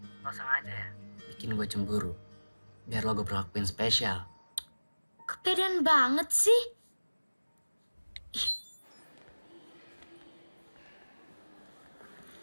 lo sengaja ya bikin gue cemburu. Biar lo gue perlakuin spesial. Kepedean banget sih.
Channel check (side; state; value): both; inverted; correlation -1.00